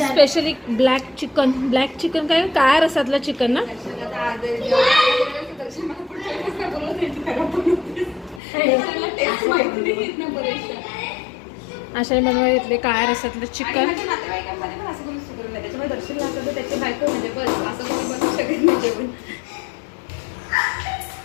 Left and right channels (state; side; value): drops out; right; at 8.4 s